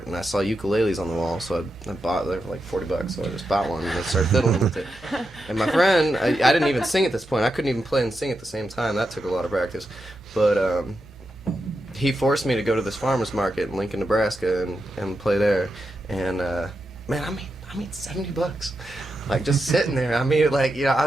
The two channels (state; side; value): noise; right; hum, 28 dB below the sound